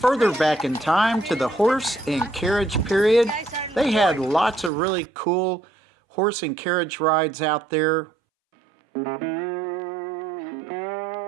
back in time to the horse and carriage period. They had lots of really cool horse and carriage rides out there.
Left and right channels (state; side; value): drops out; left; at 4.7 s